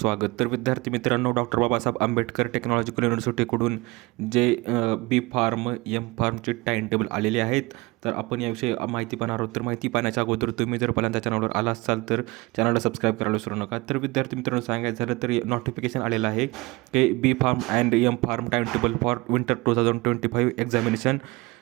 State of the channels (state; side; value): quieter; left; 23.5 dB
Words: तर विद्यार्थी मित्रांनो, डॉक्टर बाबासाहेब आंबेडकर टेक्नॉलॉजिकल युनिव्हर्सिटीकडून जे बी फार्म एम फार्मचे टाईम टेबल आलेले आहेत. तर आपण याविषयी माहिती पाहणार आहोत. तर माहिती पाहण्याच्या अगोदर तुम्ही जर पहिल्यांदा चॅनलवर आला असाल तर चॅनलला सबस्क्राईब करायला विसरू नका. तर विद्यार्थी मित्रांनो, सांगायचं झालं तर नोटिफिकेशन आलेलं आहे की B pharm and M pharm time table for winter 2025 examination